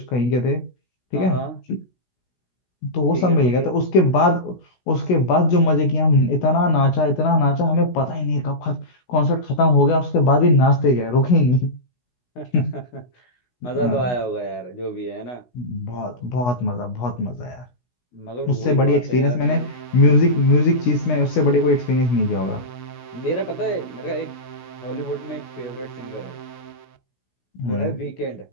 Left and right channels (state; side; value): late; right; 16 ms